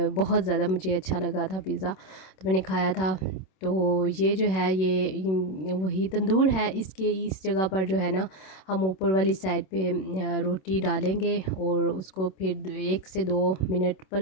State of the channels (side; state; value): right; late; 26 ms